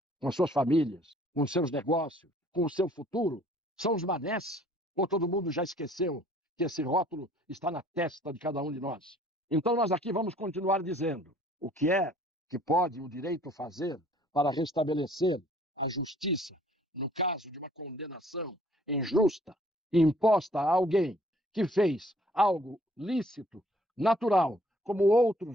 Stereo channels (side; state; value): both; normal; correlation 0.58